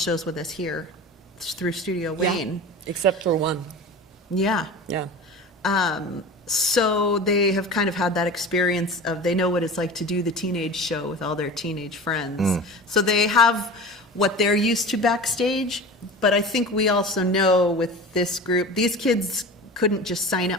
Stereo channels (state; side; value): normal; both; correlation 0.34